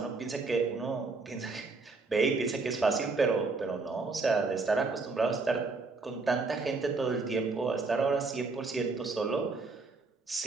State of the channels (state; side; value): quieter; left; 3.9 dB